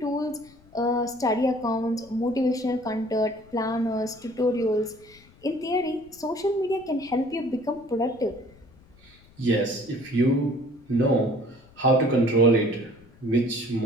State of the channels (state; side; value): noise; left; rumble, 27 dB below the sound